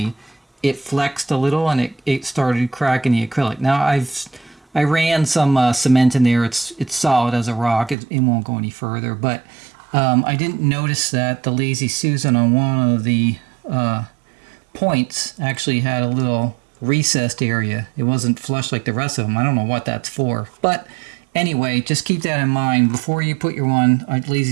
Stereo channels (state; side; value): drops out; left; at 8.0 s